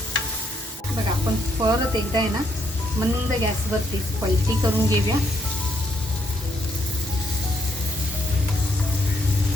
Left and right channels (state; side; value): normal; both; correlation 0.74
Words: बघा आपण परत एकदा आहे ना मंद गॅसवरती पलटी करून घेऊया.